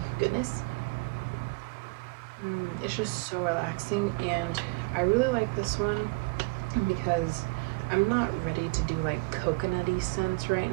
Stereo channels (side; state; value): left; quieter; 27.8 dB